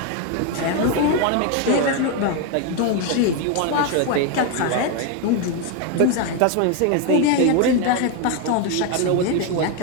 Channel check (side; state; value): both; different; correlation 0.01